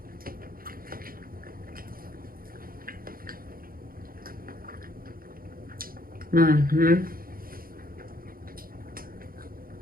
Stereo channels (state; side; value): late; left; 0.42 ms